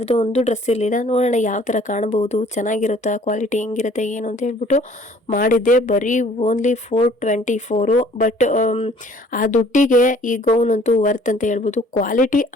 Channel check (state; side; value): normal; both; correlation 0.55